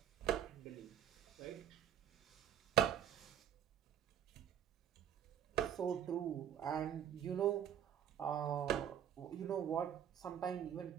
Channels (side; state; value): left; quieter; 9.9 dB